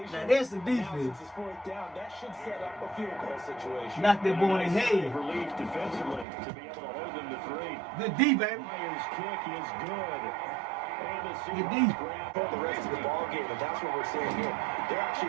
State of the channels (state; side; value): drops out; left; at 6.2 s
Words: Now that's the defense. Since it's 4th down, that should set up a field goal situation. Knock that boy in his head. Relief defensively to be able to hold them to 3. Good D, baby. Myers' kick is good. And the Good D. Seahawks grab The rest of the ball game, and that's what we're seeing here. They're